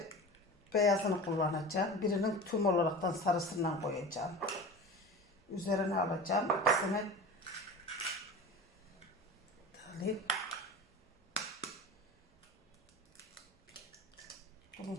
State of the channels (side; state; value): both; normal; correlation 0.33